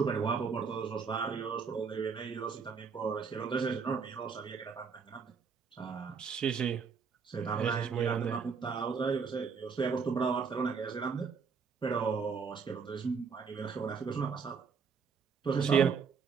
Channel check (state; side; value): quieter; left; 5.8 dB